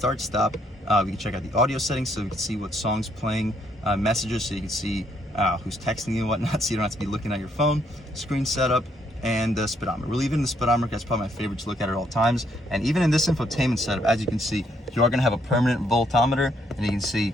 stop, we can check out the audio settings so we can see what songs playing, messages so you can see who's texting you and whatnot, so you don't have to be looking at your phone, screen setup, and the speedometer. We're leaving the speedometer, that's probably my favorite to look at all times. And even in this infotainment setup, as you can see, you are going to have a permanent voltometer, and you can see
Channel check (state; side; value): normal; both; correlation 0.71